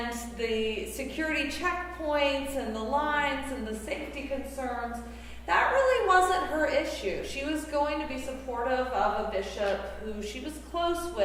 the security checkpoints and the lines and the safety concerns. That really wasn't her issue. She was going to be supportive of a bishop who she was close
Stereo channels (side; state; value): both; identical; correlation 1.00